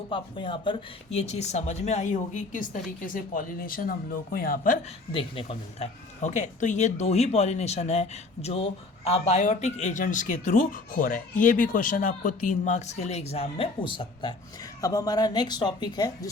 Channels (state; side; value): quieter; right; 3.3 dB